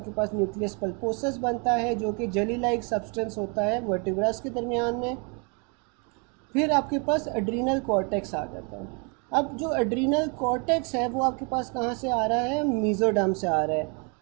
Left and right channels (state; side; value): quieter; left; 35.4 dB